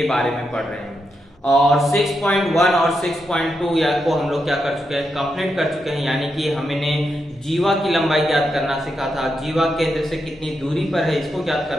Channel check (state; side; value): normal; both; correlation 0.84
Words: बारे में पढ़ रहे हैं और 6.1 और 6.2 या को हम लोग क्या कर चुके हैं, कंप्लीट कर चुके हैं। यानी कि हमने जीवा की लंबाई ज्ञात करना सीखा था, जीवा केंद्र से कितनी दूरी पर है इसको ज्ञात